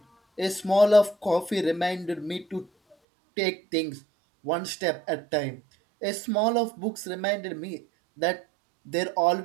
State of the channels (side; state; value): left; drops out; at 3.0 s